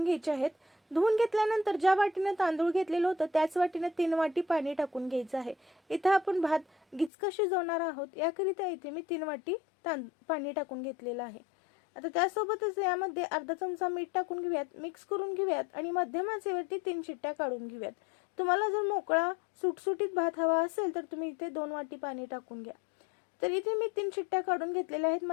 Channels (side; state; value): right; drops out; at 7.1 s